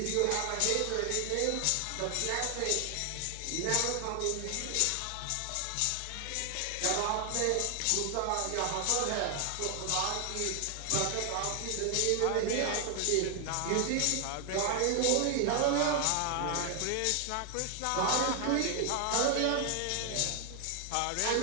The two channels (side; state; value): both; different; correlation 0.00